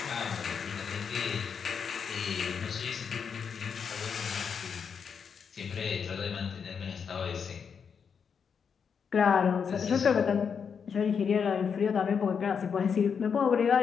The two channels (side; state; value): right; quieter; 6.6 dB